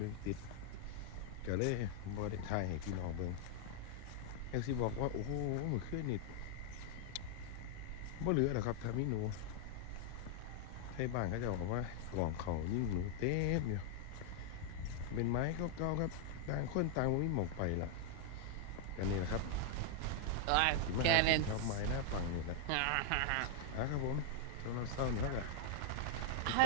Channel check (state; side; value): different; both; correlation 0.00